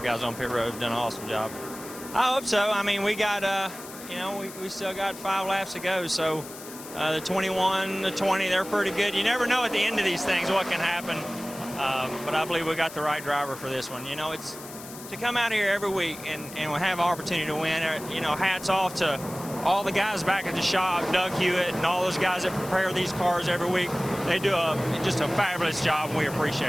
Guys on pit road have done an awesome job. I hope so. I mean, we got, you know, we still got 5 laps to go. So the 21, the 20, they're pretty good. You never know at the end of these things what can happen. But I believe we got the right driver for this one. You know, it's to come out here every week and we'll have an opportunity to win. You know, hats off to all the guys back at the shop, Doug Hewitt and all those guys that prepare these cars every week. They do just a fabulous job, and we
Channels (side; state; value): left; noise; hiss, 15 dB below the sound